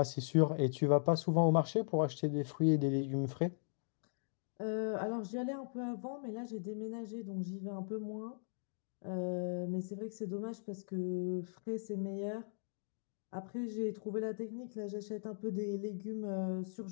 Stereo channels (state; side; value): silent; right; digital silence